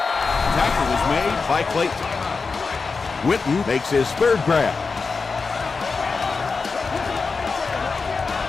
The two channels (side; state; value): right; quieter; 4.6 dB